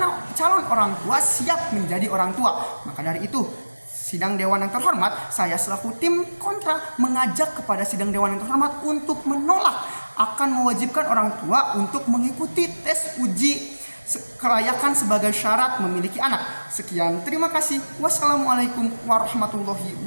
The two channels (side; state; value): both; inverted; correlation -1.00